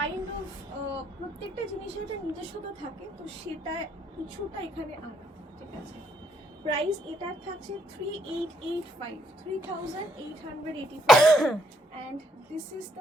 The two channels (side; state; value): both; normal; correlation 0.71